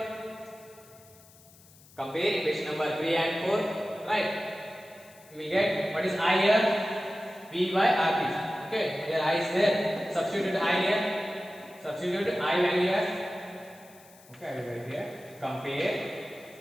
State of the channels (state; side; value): noise; left; hiss, 25 dB below the sound